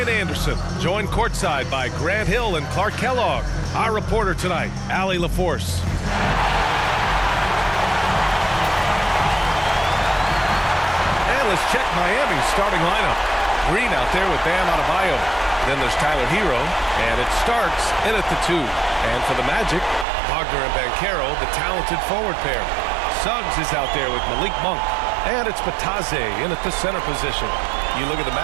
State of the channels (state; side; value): drops out; left; at 20.1 s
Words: Anderson, joined courtside by Grant Hill and Clark Kellogg. Our reporter tonight, Allie LaForce. And let's check Miami's starting lineup. Green out there with Bam Adebayo. Then there's Tyler Hero, and it starts in at the 2. And for the Magic, Wagner and Banchero, the talented forward pair. Suggs is out there with Malik Monk. And it's Batadze in at the center position. You look at the